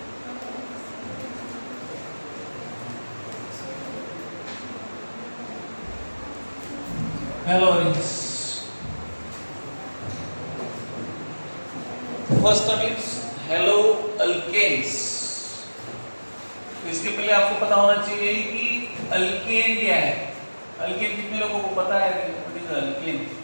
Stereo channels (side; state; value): both; inverted; correlation -1.00